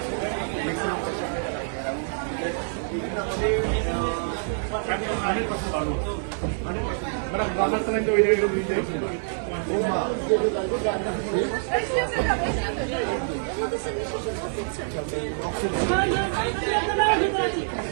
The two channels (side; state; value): left; silent; 55 dB below the other